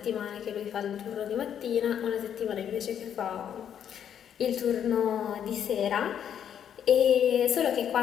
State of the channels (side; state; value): right; quieter; 9.1 dB